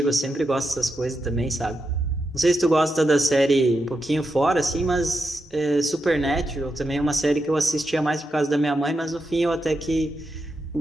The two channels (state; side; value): normal; both; correlation 0.86